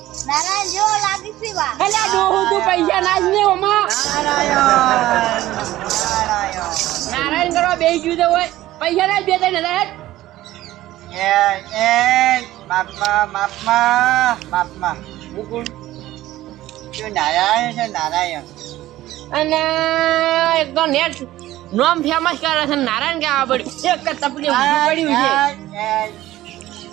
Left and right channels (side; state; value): left; quieter; 15.4 dB